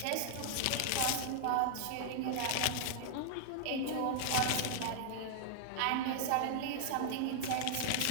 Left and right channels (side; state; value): both; different; correlation -0.01